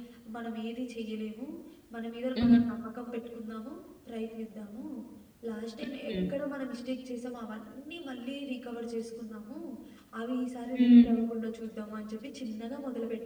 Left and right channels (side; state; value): both; identical; correlation 1.00